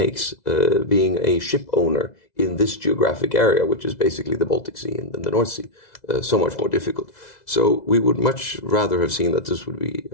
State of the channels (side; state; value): right; late; 2.0 ms